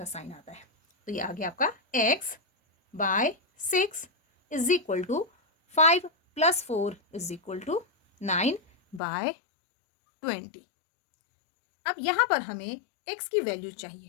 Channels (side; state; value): right; drops out; at 9.0 s